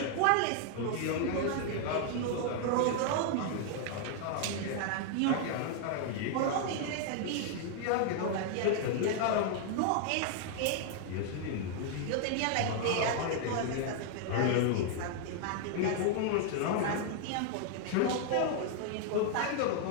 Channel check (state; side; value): different; both; correlation 0.00